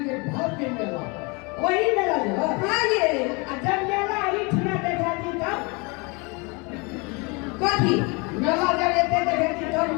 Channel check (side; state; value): right; quieter; 29.3 dB